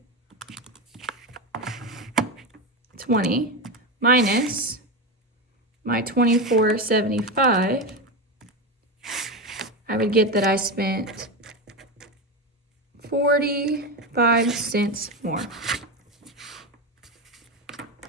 minus my 24.75, I would get that I spent 45 cents more.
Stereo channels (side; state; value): both; normal; correlation 0.16